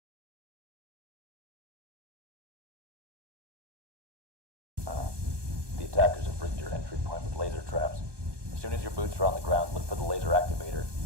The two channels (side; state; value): left; late; 1.2 ms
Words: The attackers have rigged your entry point with laser traps. As soon as your boots are on the ground, look for the laser activator